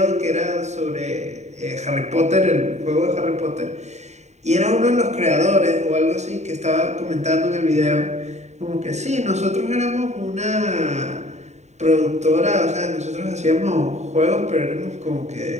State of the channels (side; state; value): left; late; 0.33 ms